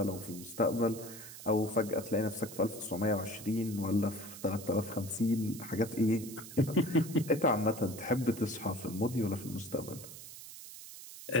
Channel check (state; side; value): noise; right; hiss, 13 dB below the sound